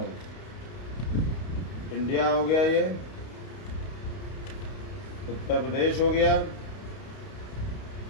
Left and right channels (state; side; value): late; right; 31 ms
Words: India हो गया। ये उत्तर प्रदेश हो गया।